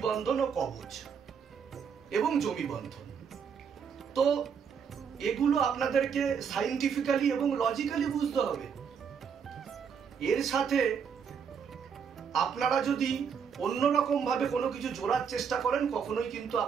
বন্ধন ও কবচ এবং জমি বন্ধন। তো এগুলো আপনাদেরকে সাইন্টিফিক্যালি এবং লজিক্যালি বুঝতে হবে। এর সাথে আপনারা যদি অন্যরকম ভাবে কোনো কিছু জোড়ার চেষ্টা করেন, কখনোই কিন্তু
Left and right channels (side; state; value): left; quieter; 6.9 dB